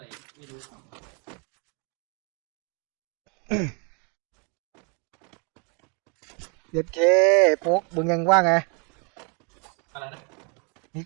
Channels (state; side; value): quieter; left; 34.9 dB